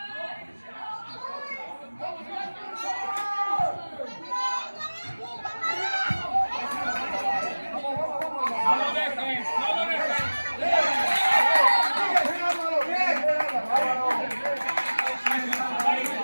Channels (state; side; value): inverted; both; correlation -1.00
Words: No lo dejes.